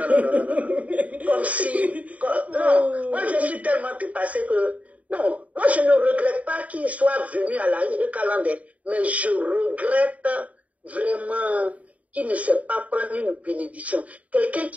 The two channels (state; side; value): late; left; 0.069 ms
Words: Comme si... non, moi je suis tellement dépassée que... Non, moi je ne regrette pas qu'il soit venu à la Eucaland, mais je regrette vraiment qu'il ne sait pas prendre une bénédiction. Quelqu'un